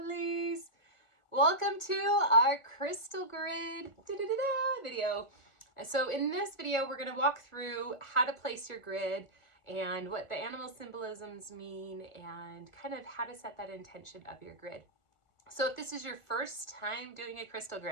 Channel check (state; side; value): late; right; 1.4 ms